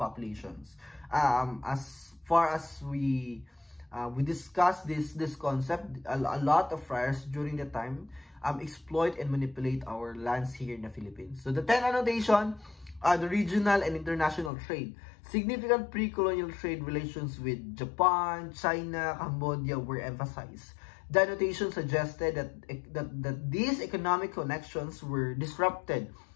As far as we discussed this concept, a lot of friars during the time exploit and manipulate our lands here in the Philippines. So the 10th annotation, the regional and international trade. Significant pre-colonial trade relations with Japan, China, Cambodia were emphasized. The annotation suggested that these economic connections were disrupted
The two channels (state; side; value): drops out; right; at 14.5 s